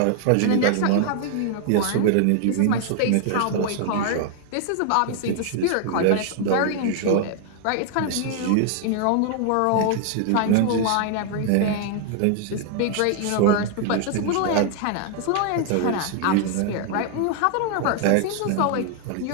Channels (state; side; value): different; both; correlation 0.00